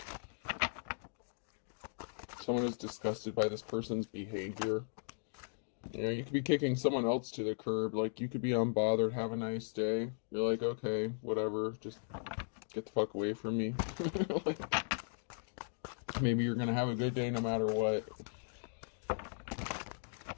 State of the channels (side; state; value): right; silent; digital silence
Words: Someone is disgusted by this person's behavior. You know, you could be kicking someone else to the curb. Like, you could be unbothered, have a nice day. You're like, okay, whatever, just get the fuck away from me. Like, maybe you're gonna have a good day no matter what.